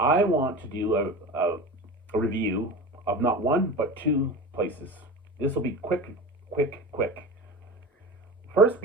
want to do a review of not one, but two places. This will be quick. First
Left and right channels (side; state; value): both; normal; correlation 0.31